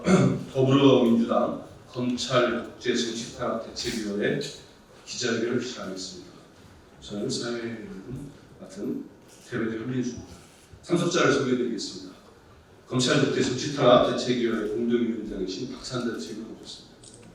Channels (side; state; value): both; identical; correlation 1.00